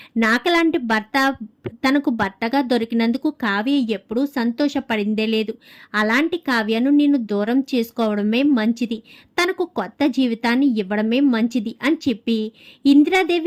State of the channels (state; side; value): identical; both; correlation 1.00